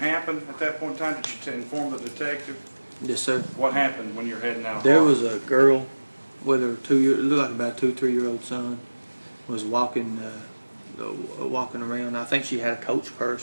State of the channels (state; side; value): inverted; both; correlation -1.00